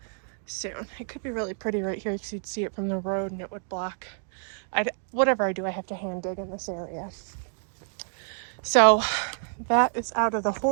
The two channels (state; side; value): silent; left; 59 dB below the other